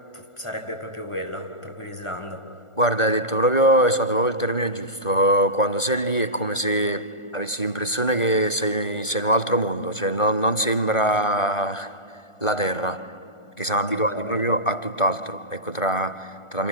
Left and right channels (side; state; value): right; late; 1.4 ms